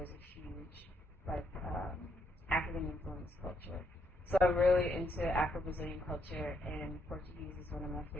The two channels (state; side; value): normal; both; correlation 0.75